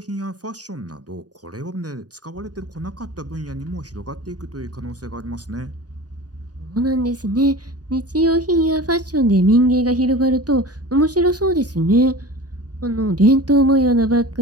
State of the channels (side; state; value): left; late; 0.68 ms